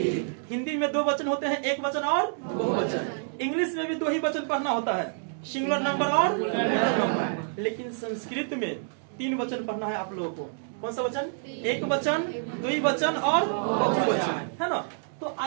हिंदी में 2 वचन होते हैं, एक वचन और बहुवचन। इंग्लिश में भी 2 ही वचन पढ़ना होता है, सिंगुलर नंबर और प्लूरल नंबर। लेकिन संस्कृत में 3 वचन पढ़ना है आप लोगों को। कौन सा वचन? एक वचन, द्विवचन और बहुवचन, है ना। तो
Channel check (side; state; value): left; silent; digital silence